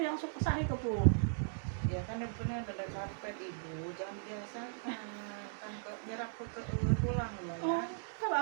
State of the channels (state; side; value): silent; left; digital silence